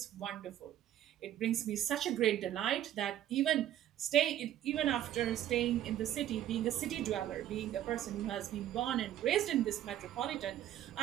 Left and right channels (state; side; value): quieter; left; 11.9 dB